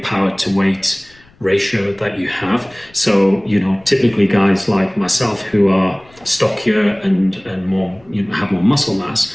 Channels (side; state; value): left; noise; rumble, 28 dB below the sound